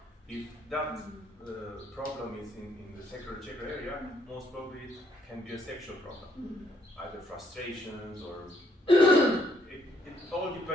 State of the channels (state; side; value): normal; both; correlation 0.71